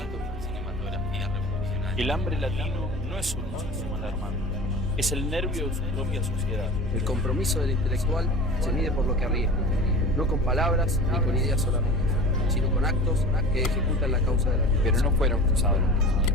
de la cinematografía revolucionaria. El hambre latino no es un monstruo alarmante, es el nervio de su propia sociedad. El compromiso del intelectual se mide por lo que arriesga, no con palabras ni con ideas solamente, sino con actos que ejecutan la causa de la vida. Pero no fueron cruzados los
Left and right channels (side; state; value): both; normal; correlation 0.36